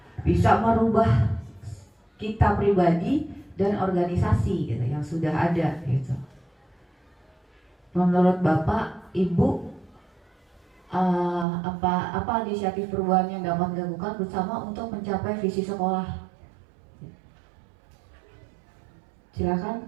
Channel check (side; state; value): left; drops out; at 11.5 s